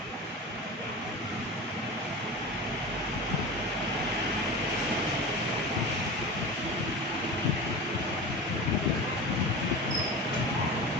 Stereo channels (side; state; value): both; normal; correlation 0.30